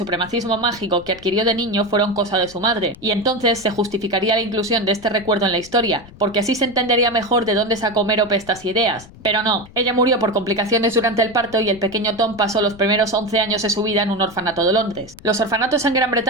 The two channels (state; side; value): noise; left; rumble, 21 dB below the sound